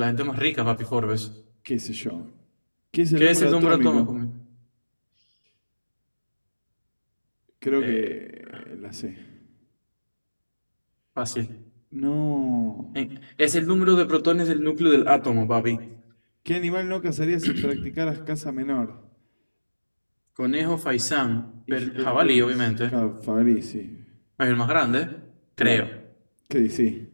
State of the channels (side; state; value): both; inverted; correlation -1.00